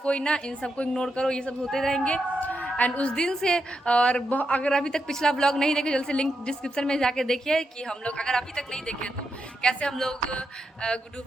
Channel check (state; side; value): normal; both; correlation 0.84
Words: ना, इन सबको इग्नोर करो, ये सब होते रहेंगे। एंड उस दिन से और अगर अभी तक पिछला ब्लॉग नहीं देखे, जल्द से लिंक डिस्क्रिप्शन में जाके देखिए कि हम लोग अगर अभी तक नहीं देखे तो कैसे हम लोग गुड्डू